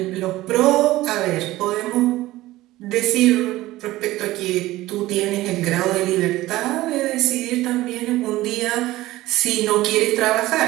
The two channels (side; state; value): left; quieter; 17.1 dB